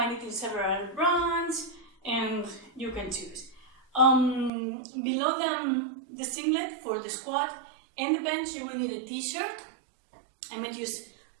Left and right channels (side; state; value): left; drops out; at 4.5 s